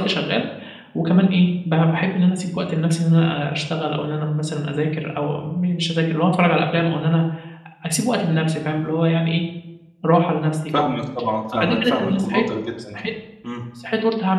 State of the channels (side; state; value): both; identical; correlation 1.00